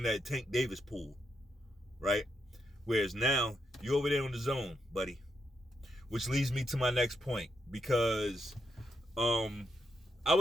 that Tank Davis pool, right? Whereas now, you're over there on the zone, buddy. Which leads me to my next point, because I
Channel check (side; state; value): both; normal; correlation 0.81